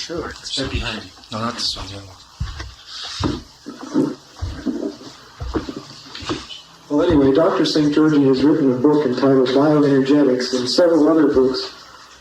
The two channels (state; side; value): identical; both; correlation 1.00